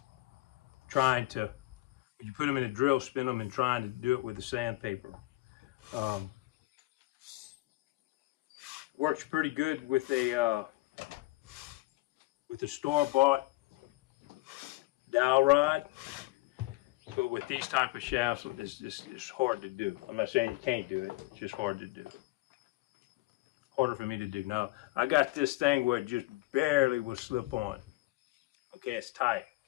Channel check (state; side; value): quieter; right; 20.6 dB